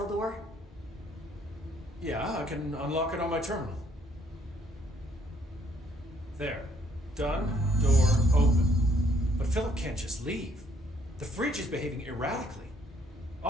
door? Yeah, I can unlock it on my terminal. There. Done. Door open. But Philip can't just leave. The fridge is behaving erratically.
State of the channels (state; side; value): normal; both; correlation 0.67